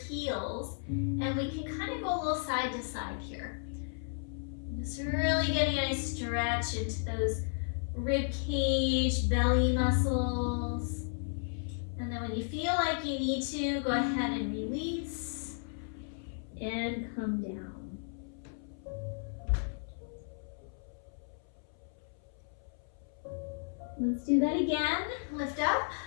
and we can kind of go a little side to side here. Just really getting a nice stretch into those rib cage, belly muscles. And then when you feel like you need to, go ahead and release and come down. Let's do that again. Lift up.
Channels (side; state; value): right; silent; 55 dB below the other